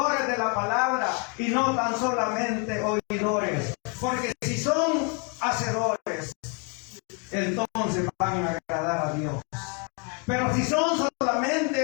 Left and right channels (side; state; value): right; quieter; 35.8 dB